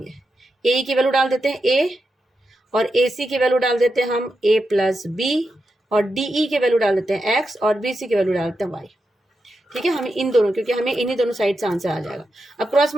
ए की वैल्यू डाल देते हैं ए, और ए सी की वैल्यू डाल देते हैं हम ए प्लस बी, और डी ई की वैल्यू डाल देते हैं एक्स, और बी सी की वैल्यू डाल देते हैं वाई। ठीक है, हमें इन दोनों, क्योंकि हमें इन्हीं दोनों साइड से आंसर आ जाएगा। अब क्रॉस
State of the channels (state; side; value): normal; both; correlation 0.87